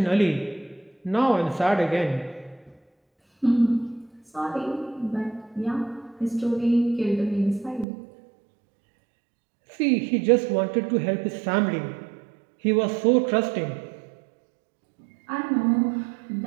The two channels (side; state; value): left; drops out; at 7.9 s